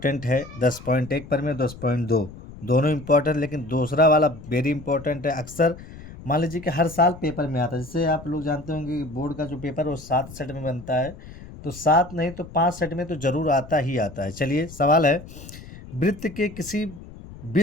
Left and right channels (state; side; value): noise; left; rumble, 16 dB below the sound